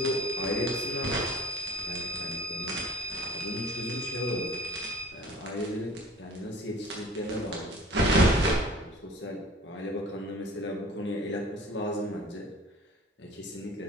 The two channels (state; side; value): normal; both; correlation 0.45